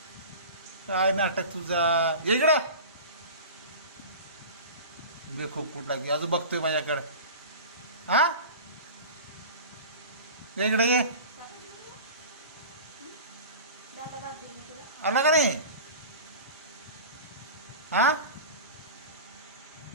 काय नाटक तुझा. ये इकडं. बे खूप कुठला की अजून बघतोय माझ्याकडं. हा ये इकडे ये. दादा दादा देऊन तुला. आला का नाही? हा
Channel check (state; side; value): inverted; both; correlation -0.34